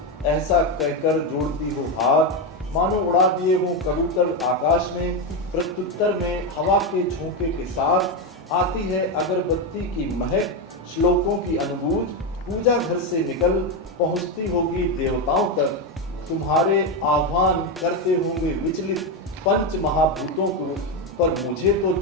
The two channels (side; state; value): both; normal; correlation 0.09